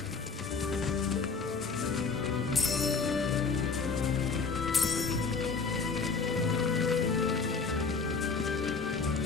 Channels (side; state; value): right; quieter; 4.8 dB